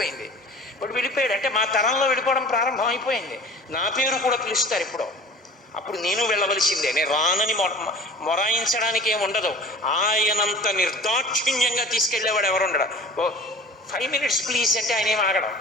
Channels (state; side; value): normal; both; correlation 0.41